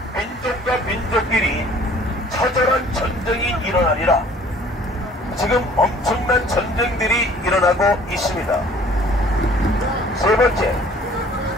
민족과 민족끼리 처절한 전쟁이 일어나리라. 지금 엄청난 전쟁들이 일어나고 있습니다. 세 번째,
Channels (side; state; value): both; normal; correlation 0.53